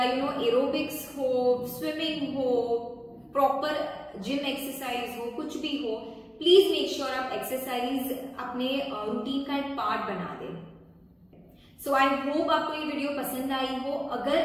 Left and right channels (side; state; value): both; identical; correlation 1.00